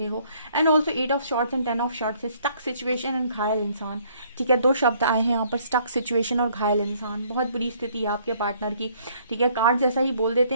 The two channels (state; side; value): inverted; both; correlation -0.63